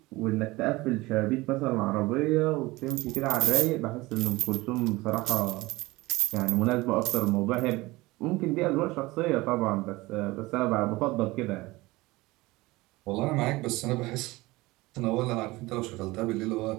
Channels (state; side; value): quieter; left; 20.9 dB